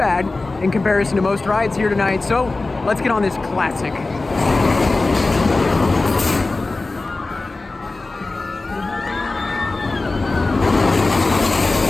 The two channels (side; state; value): right; quieter; 3.3 dB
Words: in comparison to most rides here tonight, so let's get on this classic.